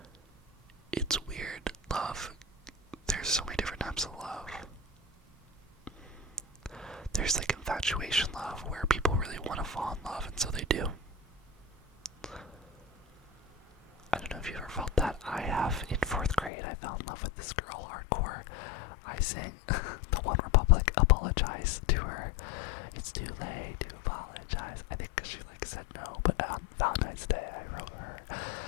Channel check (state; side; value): drops out; right; at 16.5 s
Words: It's weird. Love. There's so many different types of love. There's infatuation love, where people really want to fall in love, and so they do. I don't know if you've ever felt that. I have. In 4th grade, I fell in love with this girl hardcore. I sang the One Republic Apologize to her. It's too late to apologize. I think because she said no, but on Valentine's Day, I wrote her